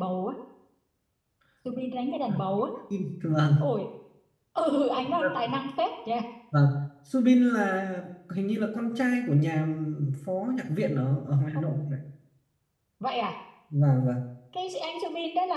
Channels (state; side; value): identical; both; correlation 1.00